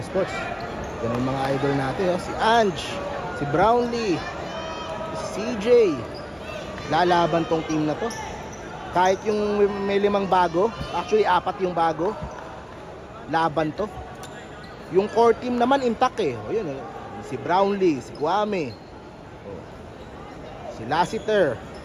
Sports. Yan ang mga idol natin, oh. Si Ange, si Brownlee, si CJ. Lalaban tong team na to. Kahit yung may 5 bago, actually 4 yung bago, laban to. Yung core team naman intact eh. O yun, si Brownlee, si Kwame, si Lassiter,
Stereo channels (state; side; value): identical; both; correlation 1.00